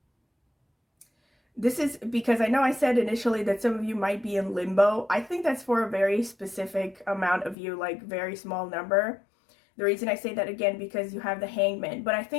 This is because I know I said initially that some of you might be in limbo. I think that's for a very specific amount of you, like very small number. The reason I say that again, because you have the Hangman. But I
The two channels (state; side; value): drops out; right; at 7.6 s